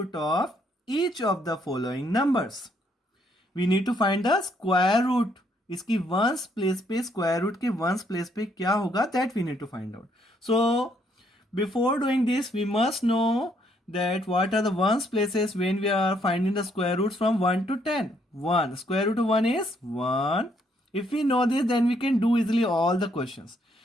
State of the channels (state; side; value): normal; both; correlation 0.70